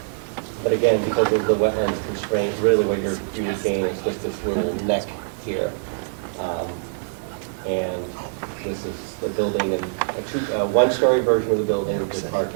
again, because of the wetlands constraint, really what you're gain is just this little neck here. And this is the building, and a one-story version of the building with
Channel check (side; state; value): left; silent; digital silence